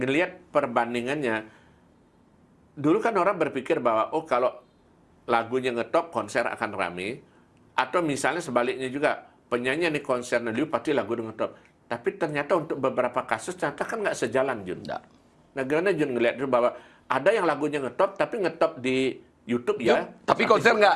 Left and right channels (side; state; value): both; identical; correlation 1.00